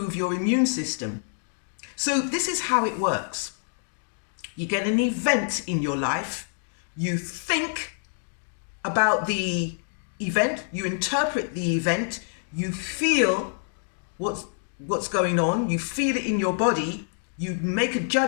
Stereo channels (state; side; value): silent; right; digital silence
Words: your immune system. So this is how it works. You get an event in your life, you think about the event, you interpret the event, you feel what's going on, you feel it in your body, you make a